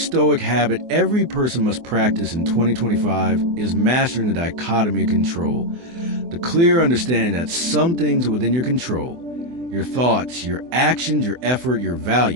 Stoic habit every person must practice in 2025 is mastering the dichotomy of control. The clear understanding that some things are within your control, your thoughts, your actions, your effort, your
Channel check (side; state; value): left; late; 24 ms